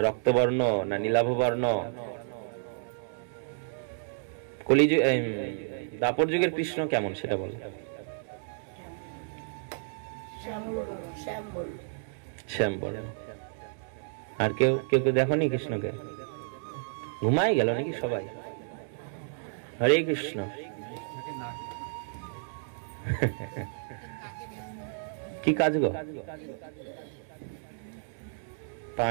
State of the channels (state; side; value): silent; left; digital silence